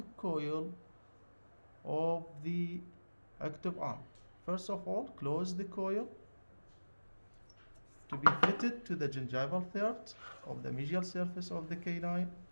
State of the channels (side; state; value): both; inverted; correlation -1.00